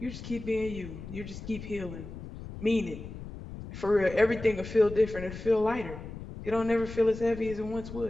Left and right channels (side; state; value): left; noise; rumble, 11 dB below the sound